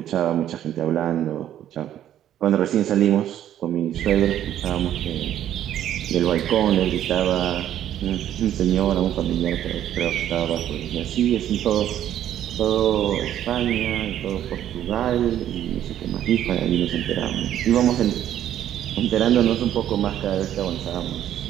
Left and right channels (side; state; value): left; quieter; 11.3 dB